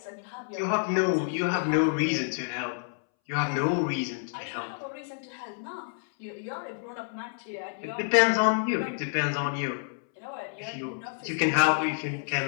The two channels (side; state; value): right; silent; 59 dB below the other